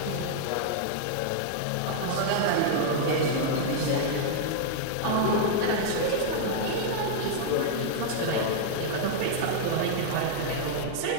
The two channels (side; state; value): both; different; correlation -0.01